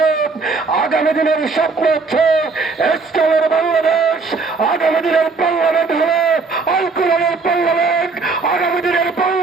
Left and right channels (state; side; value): quieter; left; 4.3 dB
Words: আগামী দিনের স্বপ্ন হচ্ছে ইসলামের বাংলাদেশ, আগামী দিনের বাংলাদেশ হবে আল কোরআনের বাংলাদেশ, আগামী দিনের